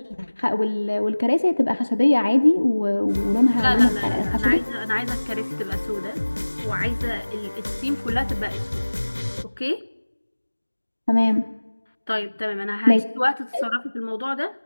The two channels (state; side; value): inverted; both; correlation -1.00